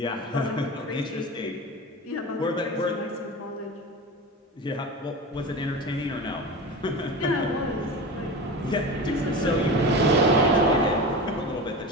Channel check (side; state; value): both; normal; correlation 0.28